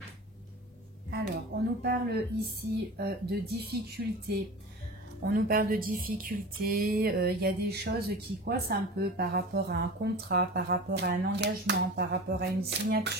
Alors, on nous parle ici de difficultés. On nous parle de difficultés. Il y a des choses qui coincent un peu par rapport à un contrat, par rapport à un engagement, par rapport à une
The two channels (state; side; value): normal; both; correlation 0.34